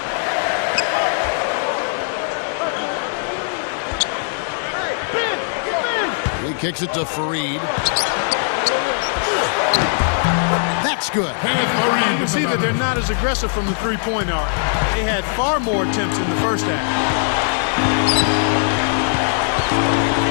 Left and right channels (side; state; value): right; silent; 66 dB below the other